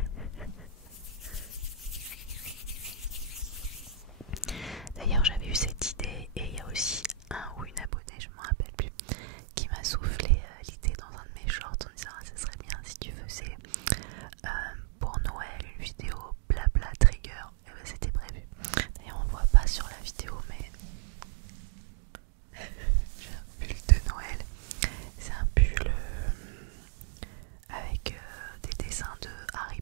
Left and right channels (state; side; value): drops out; left; at 7.9 s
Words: D'ailleurs j'avais eu cette idée et il y a aussi un ou une abonnée, je ne me rappelle plus, qui m'a soufflé l'idée dans un de mes shorts en disant ah, ça serait bien si tu faisais pour Noël une vidéo blabla trigger. Et ben, c'était prévu. D'ailleurs on voit pas sur la vidéo mais j'ai un pull de Noël. C'est un pull avec des dessins de Harry